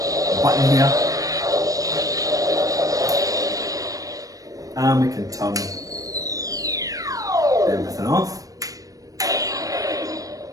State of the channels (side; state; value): left; late; 0.17 ms